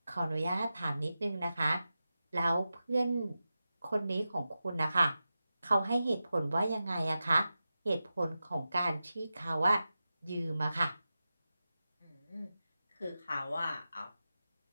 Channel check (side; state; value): both; inverted; correlation -0.93